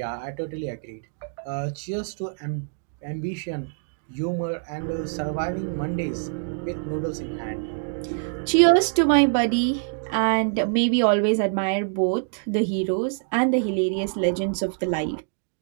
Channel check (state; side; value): silent; left; digital silence